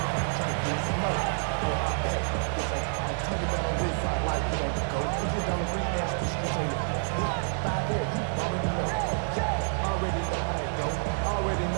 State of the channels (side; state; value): left; silent; digital silence